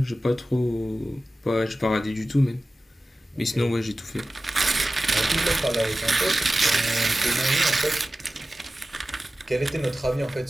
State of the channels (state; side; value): normal; both; correlation 0.95